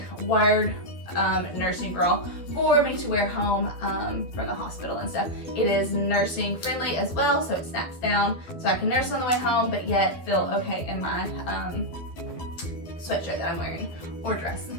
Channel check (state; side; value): late; right; 12 ms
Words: wired nursing bra for me to wear home from the hospital and stuff. It is nursing friendly as well, so it snaps down so I can nurse on the way home, but yet feel okay in my sweatshirt that I'm wearing or dress.